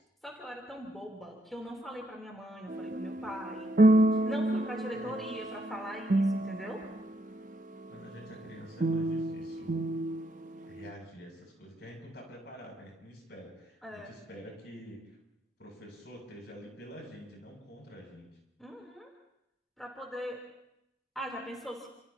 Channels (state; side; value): normal; both; correlation 0.75